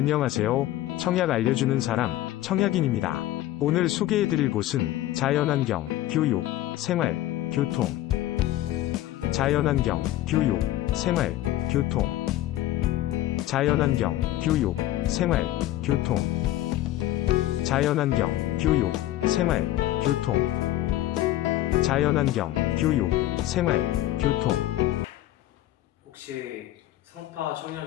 청약 알려주는 사람, 청약인입니다. 오늘 소개해드릴 곳은 자연환경, 교육, 생활, 교통. 자연환경, 교육, 생활, 교통. 자연환경, 교육, 생활, 교통. 자연환경, 교육, 생활, 교통. 자연환경, 교육, 생활, 교통. 혹시 성파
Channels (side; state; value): right; quieter; 14.4 dB